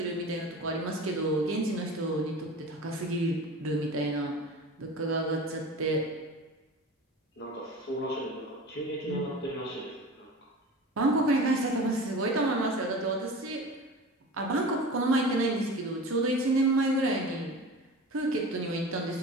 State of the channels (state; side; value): normal; both; correlation 0.35